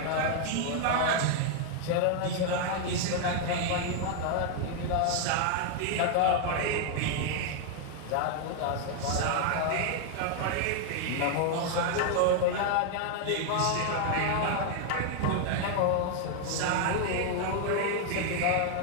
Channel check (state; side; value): different; both; correlation 0.00